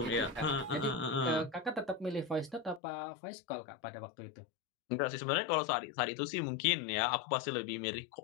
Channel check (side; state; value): right; drops out; at 2.8 s